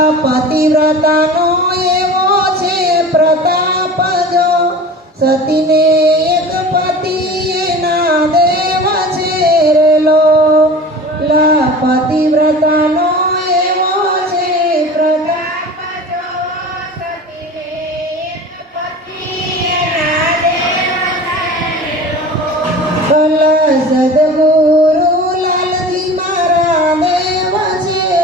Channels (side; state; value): both; normal; correlation 0.38